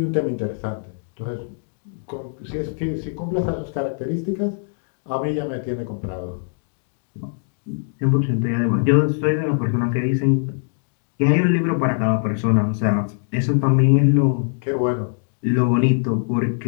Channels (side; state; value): right; silent; digital silence